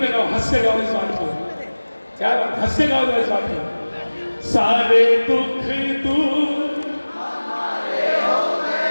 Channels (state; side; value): inverted; both; correlation -1.00